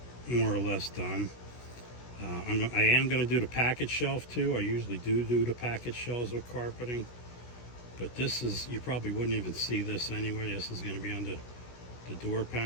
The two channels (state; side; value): late; right; 16 ms